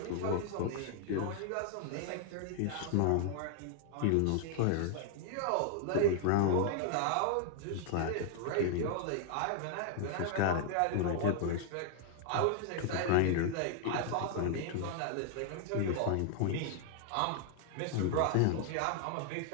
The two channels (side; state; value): both; different; correlation 0.00